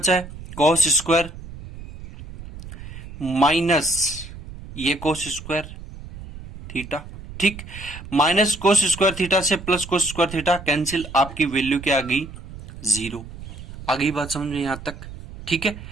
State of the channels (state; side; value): noise; right; rumble, 14 dB below the sound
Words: है, कॉस स्क्वायर माइनस ये कोस स्क्वायर थीटा। ठीक, माइनस कोस स्क्वायर थीटा से plus cos square theta cancel, आपकी वैल्यू क्या आ गई, 0 आ गई। बात समझ में यहां तक, ठीक है।